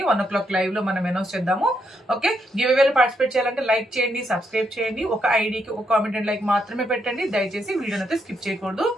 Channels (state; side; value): normal; both; correlation 0.78